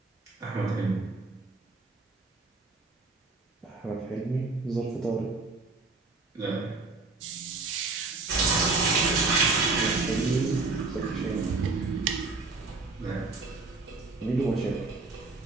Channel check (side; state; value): left; quieter; 3.7 dB